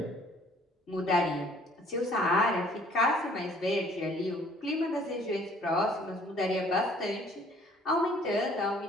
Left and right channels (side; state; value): both; normal; correlation 0.57